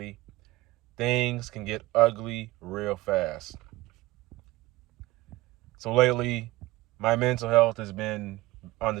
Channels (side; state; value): left; quieter; 19.3 dB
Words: things can get ugly real fast. So lately, my mental health has been on